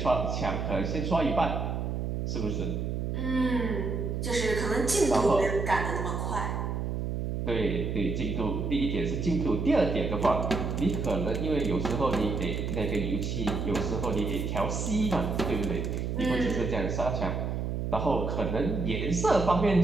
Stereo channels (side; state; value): right; noise; hum, 2 dB below the sound